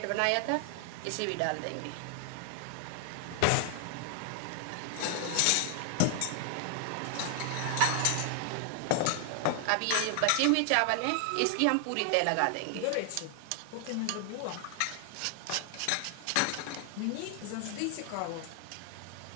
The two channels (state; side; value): different; both; correlation 0.00